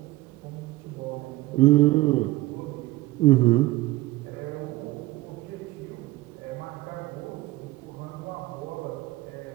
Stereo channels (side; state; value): left; quieter; 18.7 dB